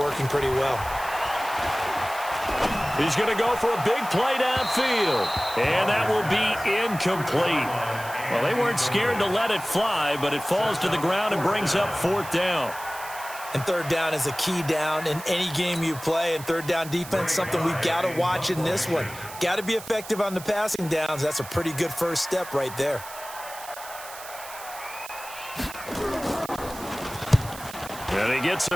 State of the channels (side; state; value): right; noise; hiss, 14 dB below the sound